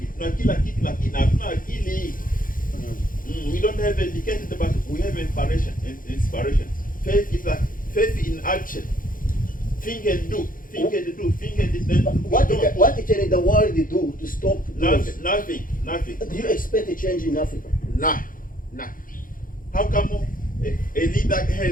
Tuna kila kitu lakini hatuna akili. We don't have educated, but we have inspiration. Faith is like faith in action. Think and do. Think and do. Think and do. What can the world do to stop those? Nothing. Do you expect a change in Africa? Nah. How come a leader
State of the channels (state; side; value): late; right; 0.40 ms